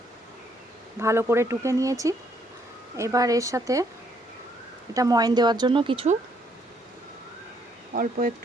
ভালো করে টুকে নিয়েছি। এবার এর সাথে এটা ময়ন দেওয়ার জন্য কিছু অল্প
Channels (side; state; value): both; normal; correlation 0.69